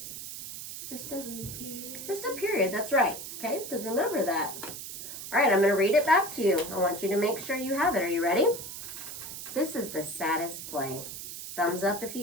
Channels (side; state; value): right; noise; hiss, 9 dB below the sound